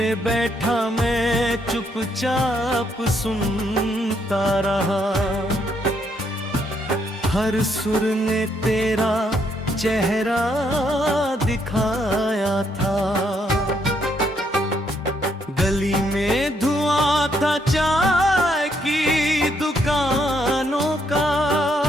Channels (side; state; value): both; normal; correlation 0.73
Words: बैठा मैं चुपचाप सुनता रहा। हर सुर ने तेरा चेहरा दिखाया था। गली में धुआं था चाय की दुकानों का,